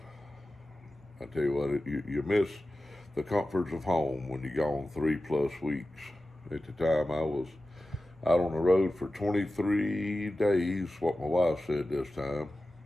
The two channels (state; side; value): normal; both; correlation 0.94